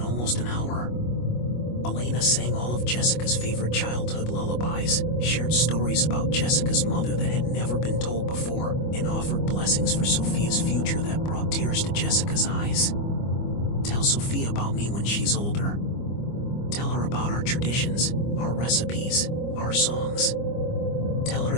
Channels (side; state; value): right; late; 25 ms